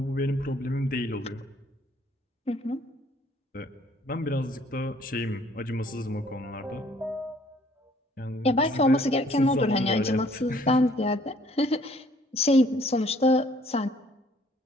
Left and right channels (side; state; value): both; normal; correlation 0.60